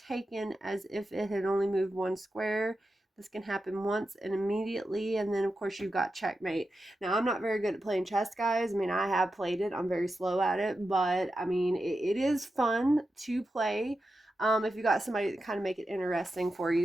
as if it had only moved 1 square. This can happen once and immediately, and then of course you've got checkmate. Now I'm not very good at playing chess, guys. I mean, I have played it. I'm very slow at it, but I mean, it is fun to play if you got somebody to kind of make it interesting for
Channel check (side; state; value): both; normal; correlation 0.90